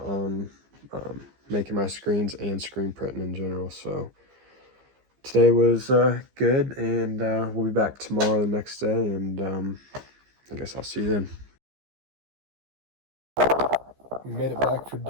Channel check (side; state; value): left; late; 15 ms